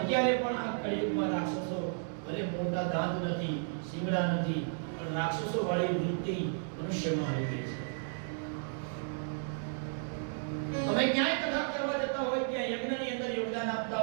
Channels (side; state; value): left; silent; digital silence